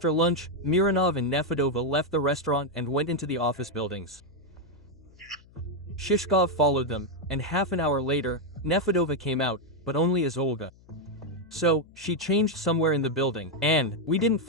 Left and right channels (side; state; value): left; noise; hum, 26 dB below the sound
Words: lunch, Mironov and Nefedova left the restaurant and went into the office buildings. Shishkov followed them, and half an hour later, Nefedova came out, but only as Olga. So, she changed somewhere in the building, and we didn't